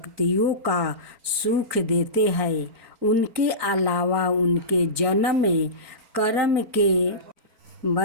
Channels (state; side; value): late; left; 4.4 ms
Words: का सुख देते हैं। उनके अलावा उनके जन्म कर्म के